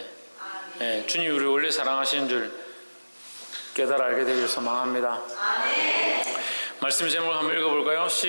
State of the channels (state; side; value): inverted; both; correlation -1.00